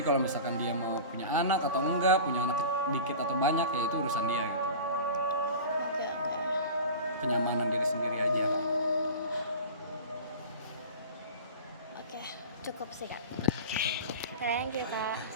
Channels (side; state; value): both; inverted; correlation -0.34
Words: kalau misalkan dia mau punya anak atau enggak, punya anak dikit atau banyak, ya itu urusan dia gitu. Kenyamanan diri sendiri aja. Cukup sih kak. Thank you kak.